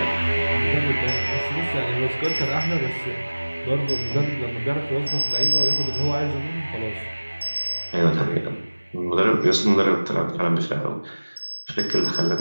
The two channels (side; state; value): both; inverted; correlation -1.00